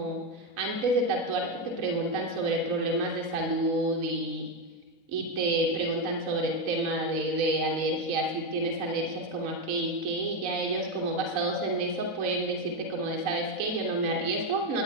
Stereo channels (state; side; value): late; left; 4.0 ms